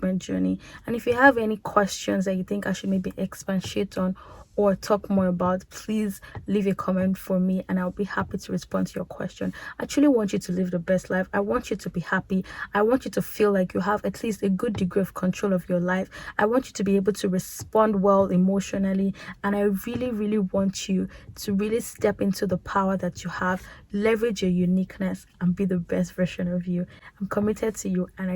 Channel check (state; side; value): identical; both; correlation 1.00